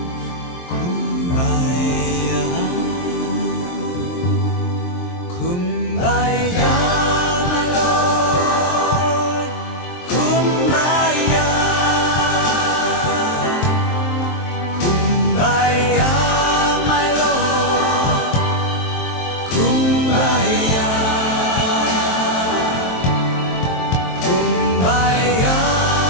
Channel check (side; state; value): right; late; 23 ms